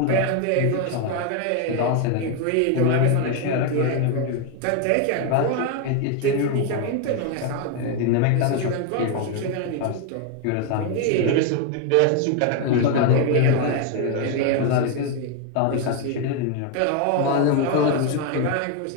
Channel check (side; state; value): both; different; correlation 0.01